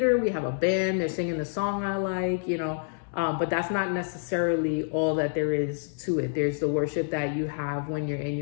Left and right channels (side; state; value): right; silent; 60 dB below the other